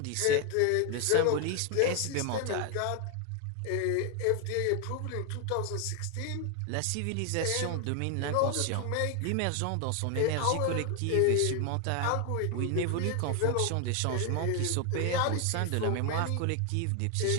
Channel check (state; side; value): different; both; correlation 0.01